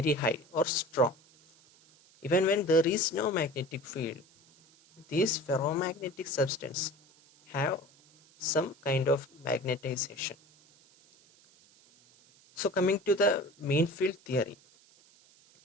high or strong. Even when there is no magnetic field, these ferromagnetic substance have some kind of magnetization. So coming to the mean field theory,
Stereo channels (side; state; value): right; noise; hiss, 29 dB below the sound